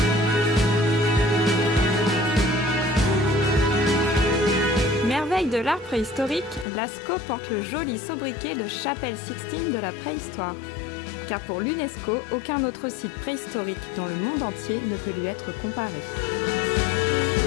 Merveille de l'art préhistorique, Lascaux porte le joli sobriquet de Chapelle Sixtine de la préhistoire. Car pour l'UNESCO, aucun autre site préhistorique dans le monde entier ne peut lui être comparé.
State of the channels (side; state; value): right; drops out; at 6.7 s